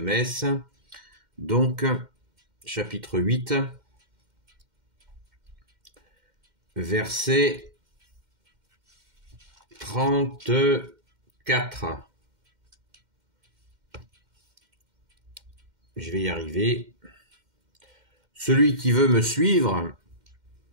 Donc, chapitre 8, verset 34. Je vais y arriver. Celui qui veut me suivre,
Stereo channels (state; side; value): late; left; 2.1 ms